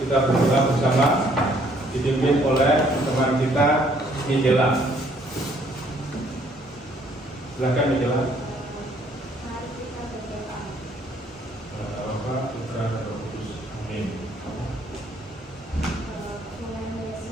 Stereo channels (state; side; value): normal; both; correlation 0.64